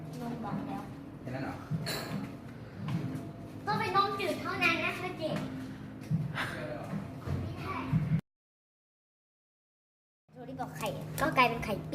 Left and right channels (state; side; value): identical; both; correlation 1.00